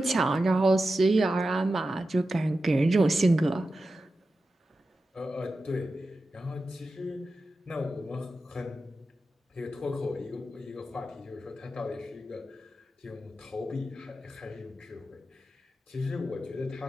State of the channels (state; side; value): normal; both; correlation 0.91